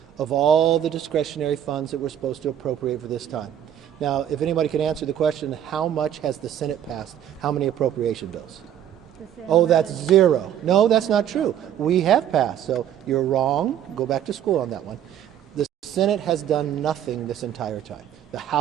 of all the discretionary funds that we're supposed to appropriate for this time. Now, if anybody can answer the question, how much has the Senate passed? How many appropriation bills? Oh, that's 0. No, that's not true. We have passed, so you're wrong. Go back to school on that one. The Senate has done nothing this entire time. The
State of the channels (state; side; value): quieter; left; 10.3 dB